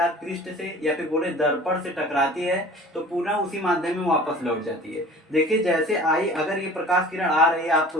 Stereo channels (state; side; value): normal; both; correlation 0.44